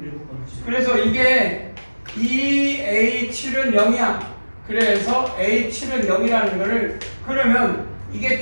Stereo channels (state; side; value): inverted; both; correlation -1.00